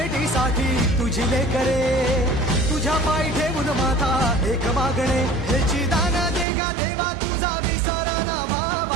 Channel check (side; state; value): left; drops out; at 6.5 s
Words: तुझी लेकरे, तुझ्या पायी ठेवून माथा एक मागणे. ह्याची दान दे गा देवा तुझा विसर न